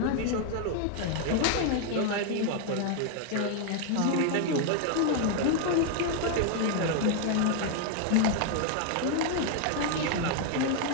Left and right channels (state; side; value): different; both; correlation 0.00